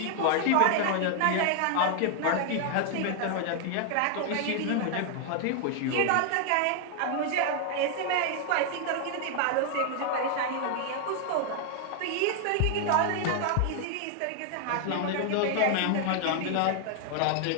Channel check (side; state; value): both; different; correlation 0.00